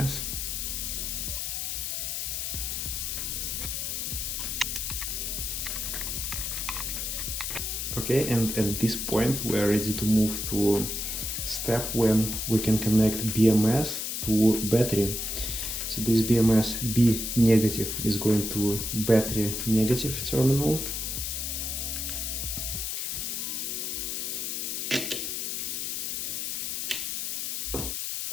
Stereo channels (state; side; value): noise; left; hiss, 2 dB below the sound